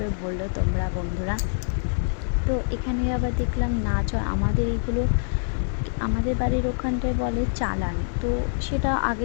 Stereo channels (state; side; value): silent; right; digital silence